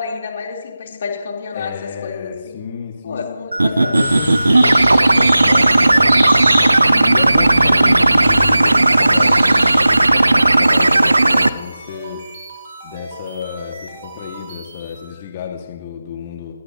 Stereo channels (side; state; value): both; inverted; correlation -0.95